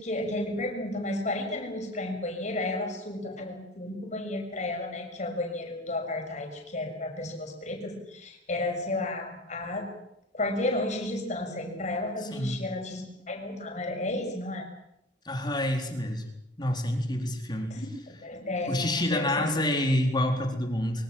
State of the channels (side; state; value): both; normal; correlation 0.42